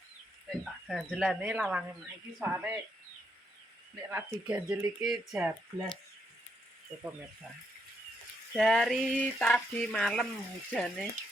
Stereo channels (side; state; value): both; normal; correlation 0.77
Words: Tak ganjelane lawange mak iki soalé nek ra diganjel iki jablas. Pemirsa. Dari tadi malam hujannya